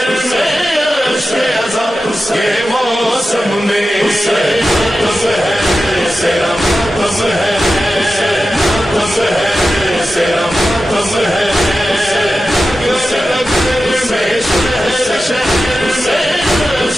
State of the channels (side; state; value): both; normal; correlation 0.93